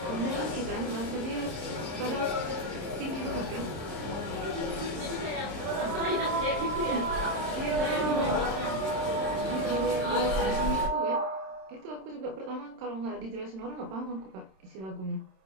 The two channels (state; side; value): late; left; 27 ms